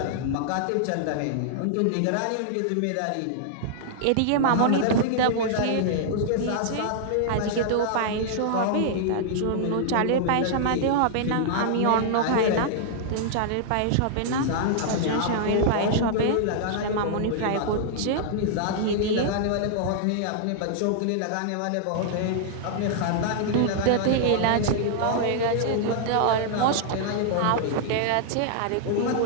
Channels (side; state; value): both; different; correlation -0.01